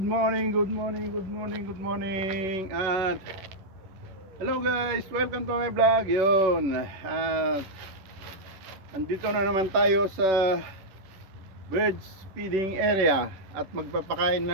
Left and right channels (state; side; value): late; left; 11 ms